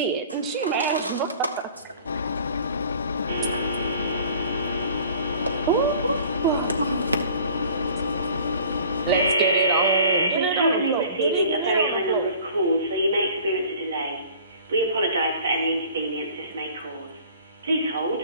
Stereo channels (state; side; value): inverted; both; correlation -0.49